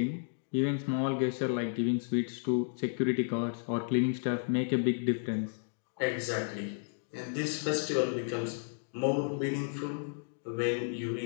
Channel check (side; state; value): right; silent; digital silence